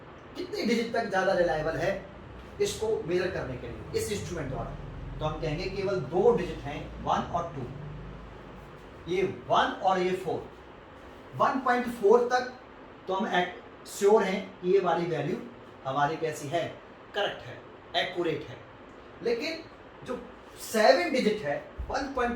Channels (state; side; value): identical; both; correlation 1.00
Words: कितनी डिजिट तक ज्यादा रिलायबल है इसको मेजर करने के लिए इस इंस्ट्रूमेंट द्वारा? तो हम कहेंगे केवल 2 डिजिट हैं, 1 और 2, ये 1 और ये 4। 1.4 तक तो हम श्योर हैं कि ये वाली वैल्यू हमारी कैसी है, करेक्ट है, एक्यूरेट है। लेकिन जो 7 डिजिट है